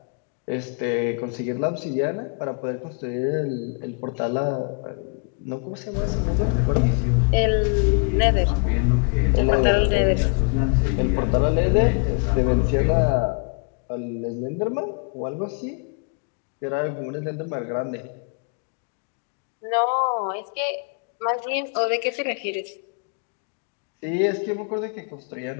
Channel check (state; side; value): quieter; right; 38.0 dB